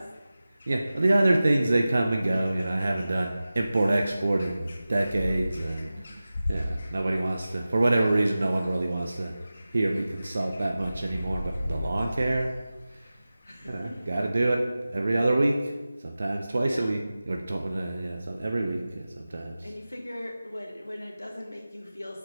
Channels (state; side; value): inverted; both; correlation -0.96